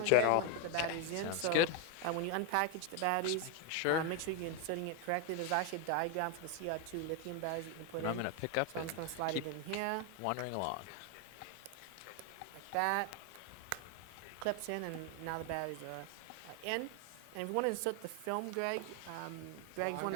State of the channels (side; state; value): both; different; correlation 0.01